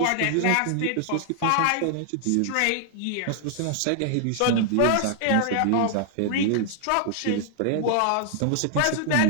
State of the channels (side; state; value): both; different; correlation 0.00